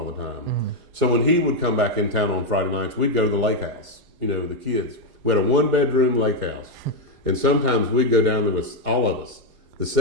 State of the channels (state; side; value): late; left; 4.9 ms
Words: the time. So when he would come back in town on Friday nights, we'd go to the lake house. The kids. We had a 1-bedroom lake house, and sometimes we'd go down there with all of us, the